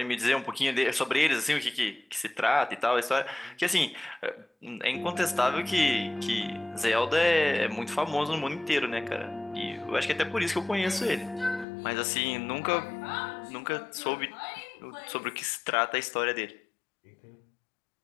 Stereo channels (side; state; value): right; drops out; at 11.7 s